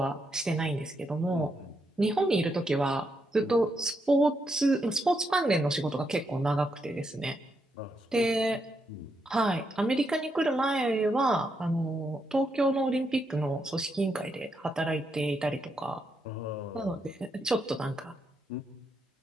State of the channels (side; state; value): both; normal; correlation 0.80